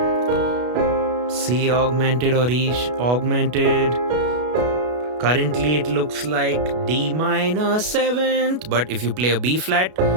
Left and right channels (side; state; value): left; late; 33 ms